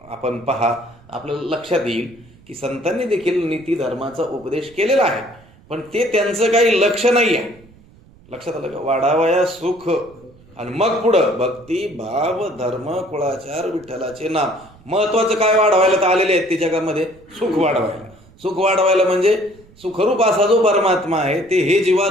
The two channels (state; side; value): noise; right; rumble, 26 dB below the sound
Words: आपण पहा, आपल्याला लक्षात येईल की संतांनी देखील नीती धर्माचा उपदेश केलेला आहे, पण ते त्यांचं काही लक्ष नाही आहे. लक्षात आलं का? वाढावया सुख, आणि मग पुढं भक्ती, भाव, धर्म, कुळाचार, विठ्ठलाचे नाम. महत्वाचं काय वाढवायला तर आलेले आहेत ते जगामध्ये? सुख वाढवायला. सुख वाढवायला म्हणजे सुखरूप असा जो परमात्मा आहे ते हे जीवा